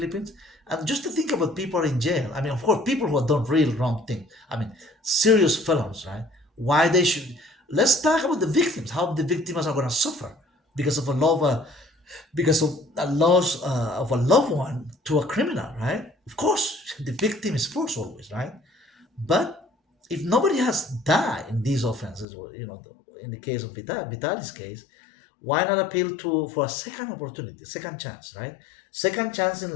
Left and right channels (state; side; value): drops out; right; at 22.2 s